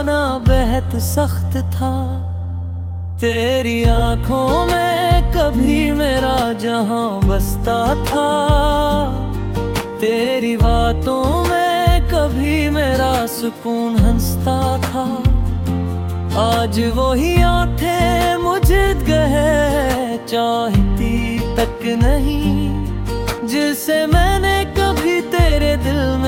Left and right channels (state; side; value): identical; both; correlation 1.00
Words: बेहद सख्त था। तेरी आंखों में कभी मेरा जहां बसता था, तेरी बातों में कभी मेरा सुकून हंसता था। आज वही आंखें मुझे कहे चाहती तक नहीं, जिसे मैंने कभी तेरे दिल